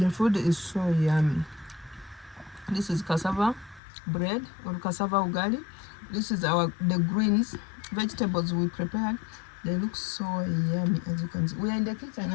food is so yummy. This is cassava bread or cassava ugali. This is the greens, vegetables we prepared. They look so yummy, as you can see. We are in the kitchen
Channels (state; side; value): drops out; right; at 3.8 s